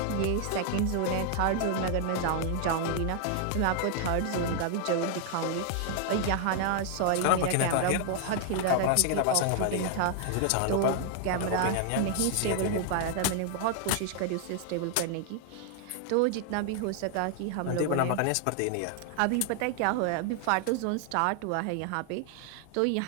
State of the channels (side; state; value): both; different; correlation 0.00